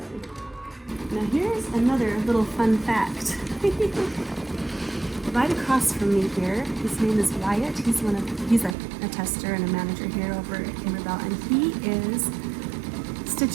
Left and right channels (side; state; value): left; drops out; at 8.8 s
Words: Now here's another little fun fact. Right across from me here, his name is Wyatt. He's a tester and a manager here over at Kimberbell, and he is